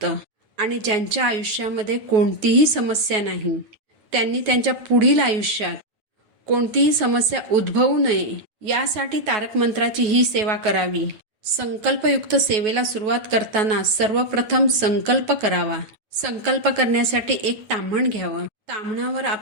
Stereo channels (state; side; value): late; left; 9.4 ms